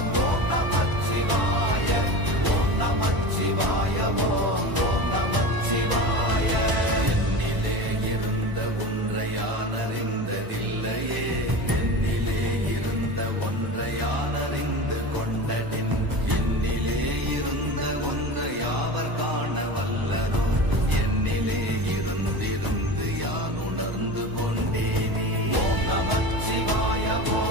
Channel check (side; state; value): left; late; 1.0 ms